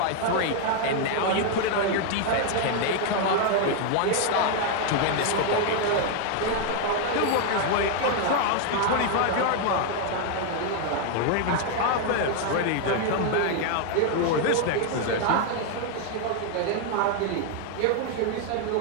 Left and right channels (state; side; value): different; both; correlation 0.00